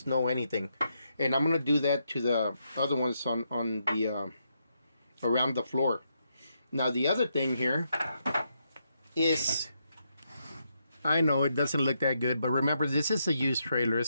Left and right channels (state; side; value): inverted; both; correlation -0.80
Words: no anything. And I'm gonna do that to the other ones on the around the floor. Now, the other thing here is, I know it doesn't look that good, but remember, this is a used trailer.